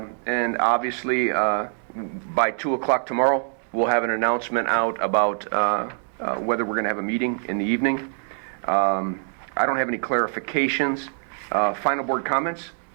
obviously by 2 o'clock tomorrow, we'll have an announcement out about whether we're going to have a meeting in the evening. I don't have any clarifications. Final board comments?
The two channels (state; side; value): silent; left; 58 dB below the other